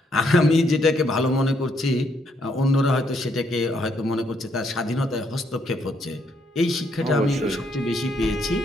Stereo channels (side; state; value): both; normal; correlation 0.73